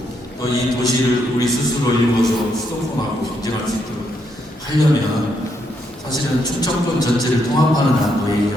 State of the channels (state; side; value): normal; both; correlation 0.77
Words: 또 이 도시를 우리 스스로 이루어서 수도권하고 경쟁할 수 있도록 하려면 사실은 충청권 전체를 통합하는 안도